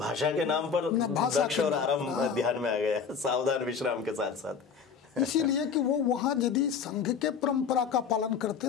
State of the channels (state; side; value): quieter; right; 6.3 dB